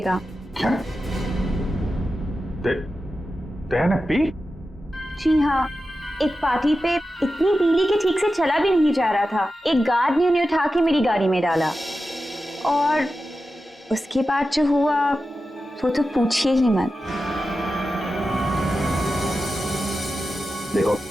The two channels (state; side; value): normal; both; correlation 0.92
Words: क्या? दया ने पी? जी हाँ, एक पार्टी पे इतनी पीली कि ठीक से चला भी नहीं जा रहा था। एक गार्ड ने उन्हें उठा के मेरी गाड़ी में डाला और उसके बाद जो हुआ वो तो पूछिए ही मत। देखो,